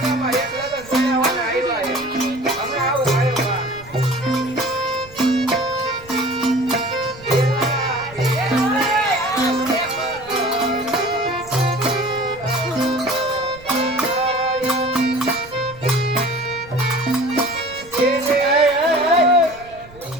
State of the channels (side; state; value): right; noise; rumble, 22 dB below the sound